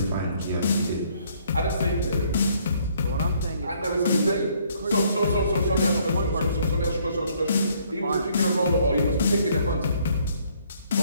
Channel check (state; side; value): inverted; both; correlation -0.65